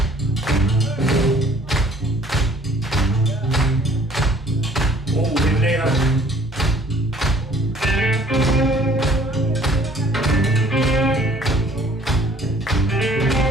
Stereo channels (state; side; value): normal; both; correlation 0.56